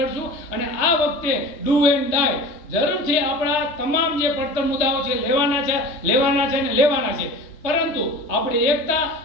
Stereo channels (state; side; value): late; right; 3.3 ms